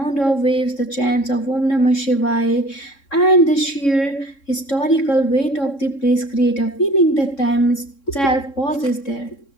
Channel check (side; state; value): right; late; 3.6 ms